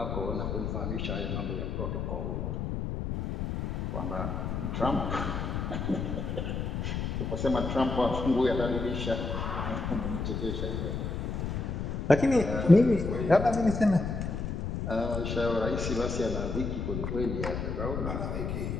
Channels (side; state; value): left; noise; rumble, 2 dB below the sound